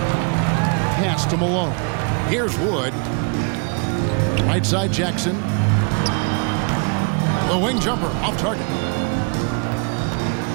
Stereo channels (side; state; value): left; quieter; 37.9 dB